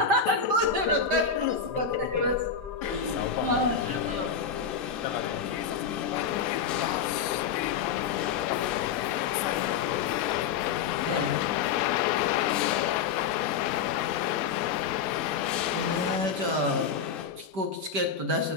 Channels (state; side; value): quieter; right; 6.4 dB